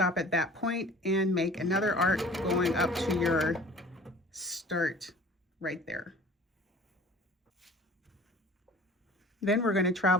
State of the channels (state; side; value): normal; both; correlation 0.46